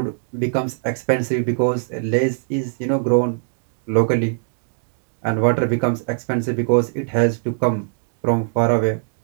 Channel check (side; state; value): left; silent; digital silence